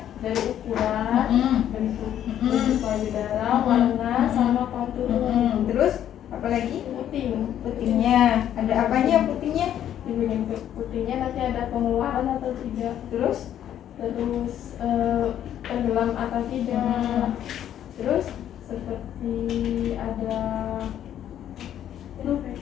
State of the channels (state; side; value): quieter; right; 10.7 dB